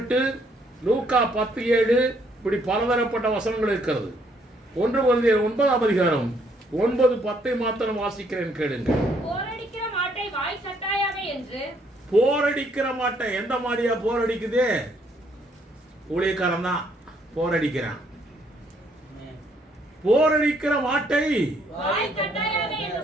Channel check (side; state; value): both; normal; correlation 0.68